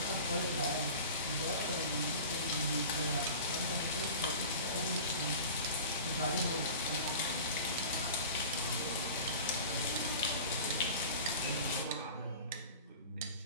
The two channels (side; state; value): both; inverted; correlation -0.37